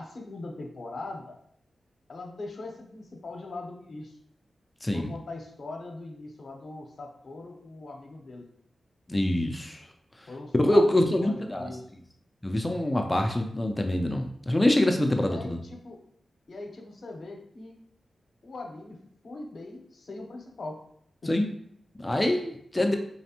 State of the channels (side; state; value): both; normal; correlation 0.96